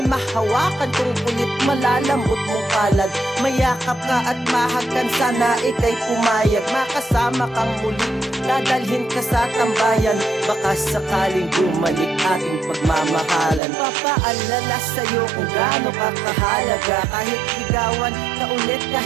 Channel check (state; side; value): drops out; left; at 13.6 s